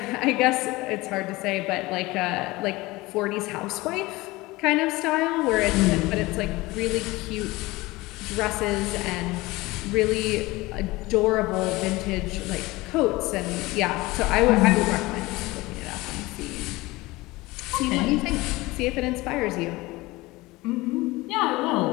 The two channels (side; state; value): right; quieter; 20.8 dB